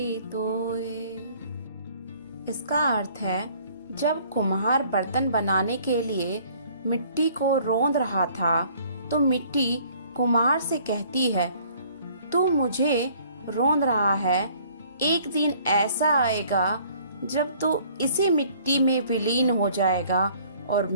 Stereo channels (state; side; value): inverted; both; correlation -0.57